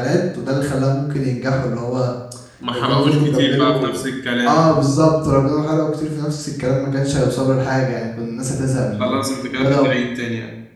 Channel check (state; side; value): identical; both; correlation 1.00